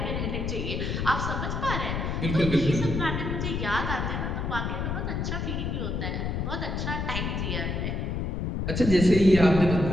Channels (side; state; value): left; noise; rumble, 2 dB below the sound